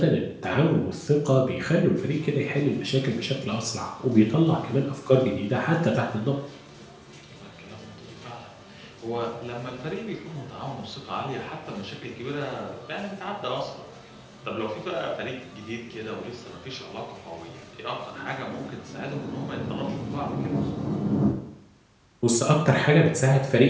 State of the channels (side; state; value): both; identical; correlation 1.00